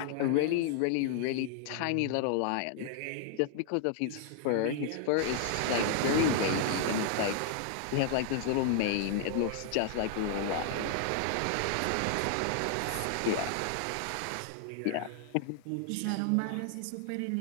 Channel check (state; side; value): different; both; correlation 0.00